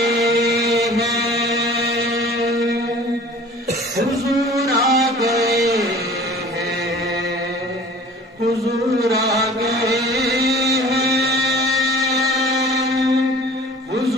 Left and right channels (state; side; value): normal; both; correlation 0.45